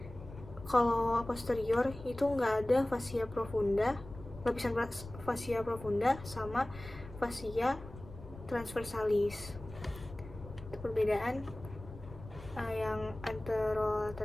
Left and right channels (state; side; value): noise; left; rumble, 15 dB below the sound